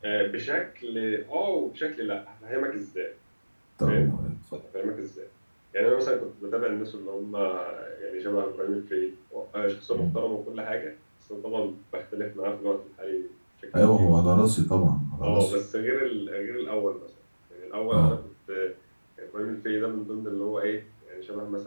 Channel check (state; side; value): inverted; both; correlation -1.00